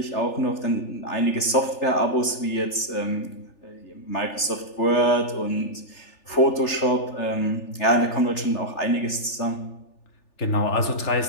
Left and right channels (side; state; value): right; late; 3.4 ms